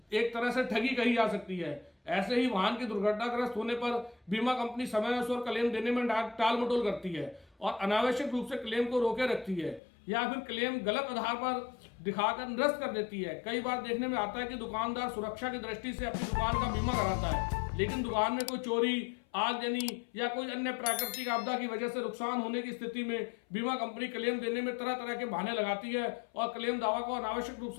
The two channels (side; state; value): right; drops out; at 9.8 s